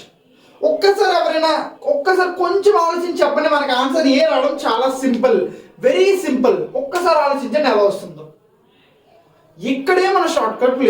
ఒక్కసారి కొంచెం ఆలోచించి చెప్పండి మనకి ఆన్సర్ ఏ రావడం చాలా సింపుల్ వెరీ సింపుల్ ఒక్కసారి ఆలోచించండి ఎలా వస్తుందో ఇక్కడే మన షార్ట్ కట్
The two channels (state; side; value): identical; both; correlation 1.00